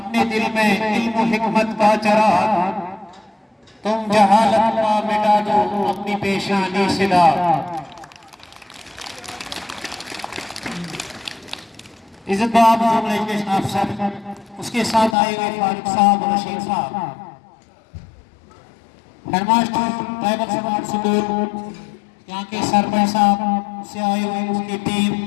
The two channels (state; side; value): drops out; right; at 15.2 s